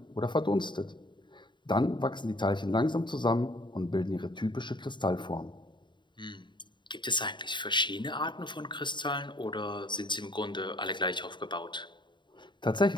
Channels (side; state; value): right; late; 0.23 ms